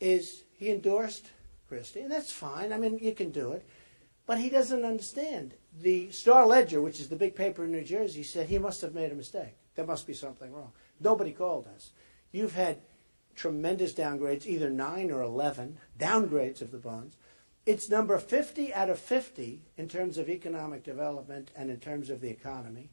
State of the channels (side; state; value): both; inverted; correlation -1.00